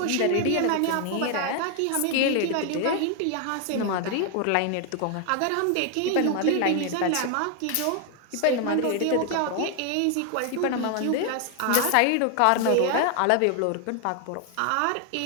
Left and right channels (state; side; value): different; both; correlation 0.00